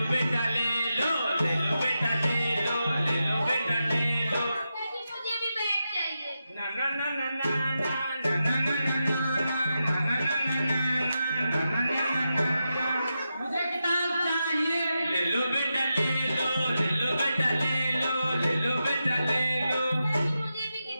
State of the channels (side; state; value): both; inverted; correlation -0.89